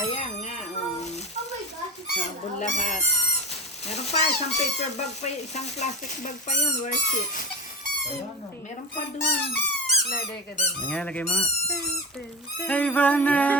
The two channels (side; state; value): both; normal; correlation 0.24